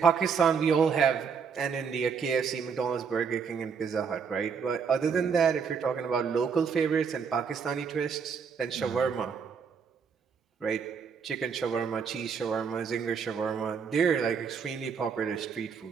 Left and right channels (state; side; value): quieter; left; 6.2 dB